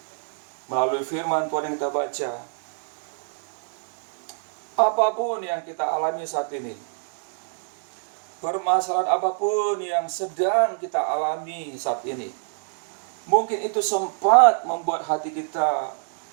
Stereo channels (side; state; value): left; silent; digital silence